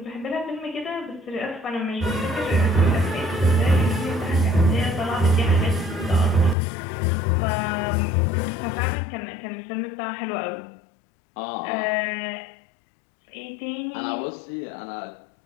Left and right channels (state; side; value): drops out; right; at 6.6 s